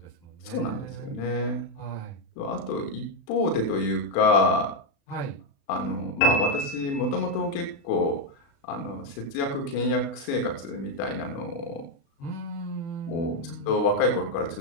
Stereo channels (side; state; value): right; late; 36 ms